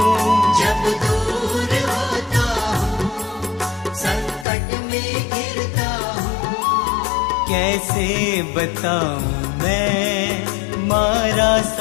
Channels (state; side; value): drops out; right; at 4.5 s